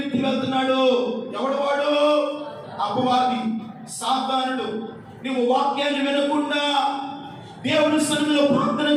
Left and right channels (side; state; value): both; identical; correlation 1.00